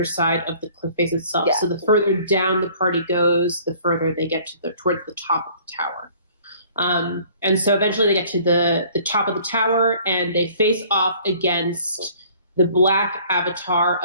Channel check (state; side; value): inverted; both; correlation -0.54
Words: of the cliff face itself. Yeah. So the further down the party goes, the further they get to towards the top of the tower. And so eventually they get to the top of the tower, and they face off against the black avatar